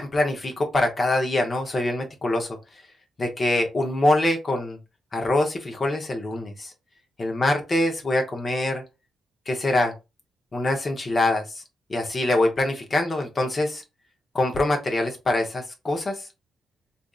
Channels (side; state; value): both; normal; correlation 0.87